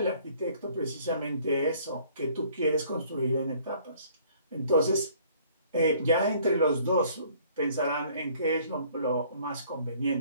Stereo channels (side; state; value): both; inverted; correlation -0.57